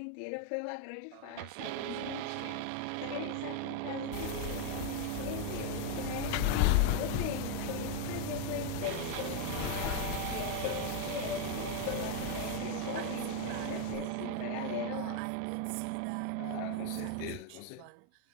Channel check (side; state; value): both; different; correlation 0.00